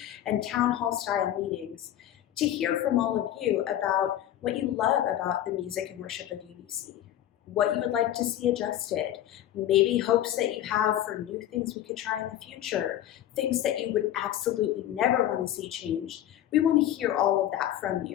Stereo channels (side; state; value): right; quieter; 12.0 dB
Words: and town hall style meetings to hear from all of you about what you love about the music and worship of UBC, what you would like to see adjusted, maybe hopes that you have for new things we could try in the future, things that you would absolutely never want to see changed. We want to hear all of that from